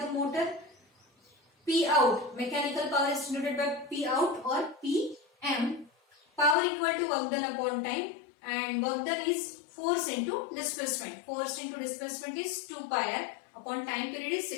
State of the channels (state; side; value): drops out; right; at 6.6 s